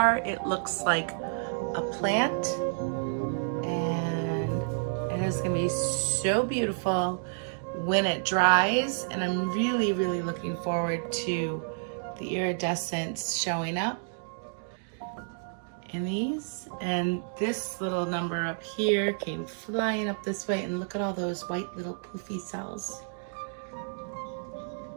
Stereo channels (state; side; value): silent; left; digital silence